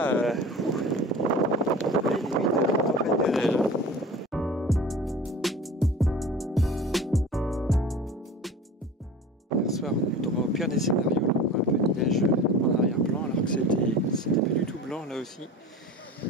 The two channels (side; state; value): both; normal; correlation 0.37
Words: les limites de la tempête de neige. Hier soir, on a eu droit au pire des scénarios. Là, un peu de neige en arrière-plan, alors que c'était pas du tout blanc là aussi.